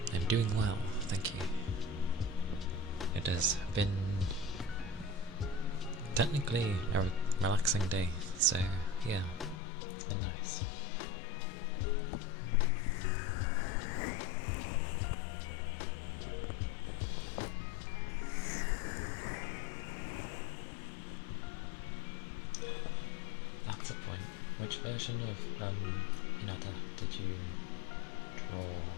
I'm doing well, thank you. It has been technically a relaxing day, so yeah, it's been nice. That's a point. Which version of Hinata did you draw?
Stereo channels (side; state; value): right; drops out; at 9.6 s